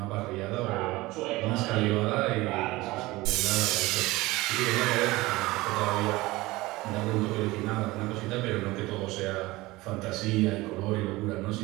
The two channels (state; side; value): quieter; left; 20.1 dB